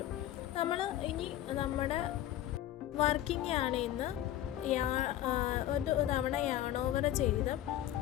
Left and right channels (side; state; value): right; quieter; 12.8 dB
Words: നമ്മൾ ഇനി നമ്മുടെ വർക്കിംഗ് യാണിന്ന് ഒരു തവണ യാൺ ഓവർ ചെയ്ത്